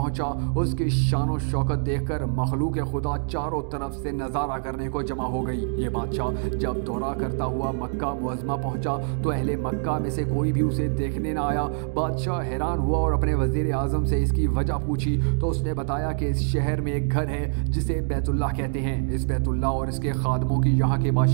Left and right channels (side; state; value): left; silent; digital silence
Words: اس کی شان و شوکت دیکھ کر مخلوق خدا چاروں طرف سے نظارہ کرنے کو جمع ہو گئی۔ یہ بادشاہ جب دورہ کرتا ہوا مکہ معظمہ پہنچا تو اہل مکہ میں سے کوئی بھی اسے دیکھنے نہ آیا۔ بادشاہ حیران ہوا اور اپنے وزیر اعظم سے اس کی وجہ پوچھی تو اس نے بتایا کہ اس شہر میں ایک گھر ہے جسے بیت اللہ کہتے ہیں۔ اس بیت اللہ اور اس کے خادموں کی یہاں کے